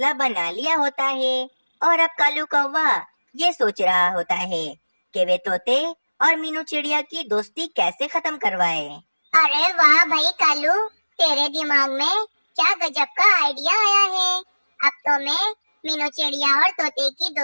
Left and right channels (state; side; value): inverted; both; correlation -1.00